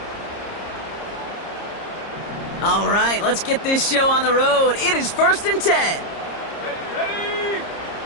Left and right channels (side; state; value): right; late; 30 ms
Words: All right, let's get this show on the road. It is first and 10. Ready,